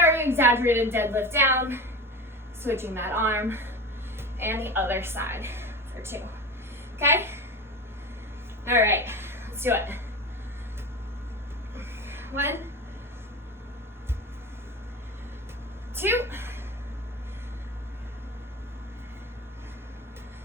exaggerated deadlift down, switching that arm, and the other side for 2. Okay? All right, let's do it. 1, 2,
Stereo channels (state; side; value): normal; both; correlation 0.28